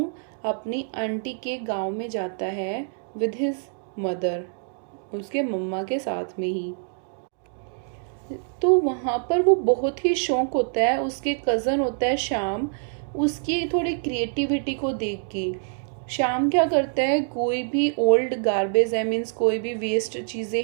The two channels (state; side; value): silent; left; digital silence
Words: अपनी आंटी के गांव में जाता है विद हिज मदर, उसके मम्मा के साथ में ही। तो वहाँ पर वो बहुत ही शौक होता है, उसके कज़न होता है श्याम, उसकी थोड़ी क्रिएटिविटी को देख के। श्याम क्या करता है, कोई भी ओल्ड गार्बेज है, मीन्स कोई भी वेस्ट चीज़ें